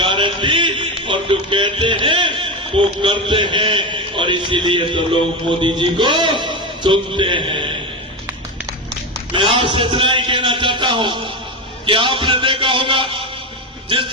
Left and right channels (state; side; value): normal; both; correlation 0.17